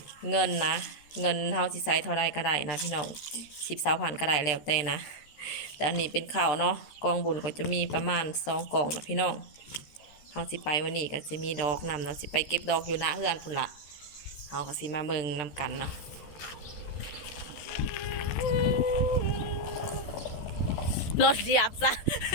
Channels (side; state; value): right; late; 13 ms